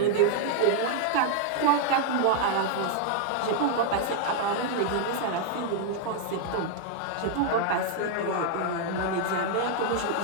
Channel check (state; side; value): different; both; correlation 0.00